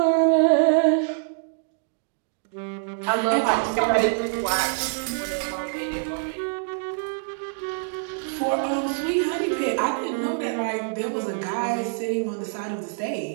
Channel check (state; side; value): silent; left; digital silence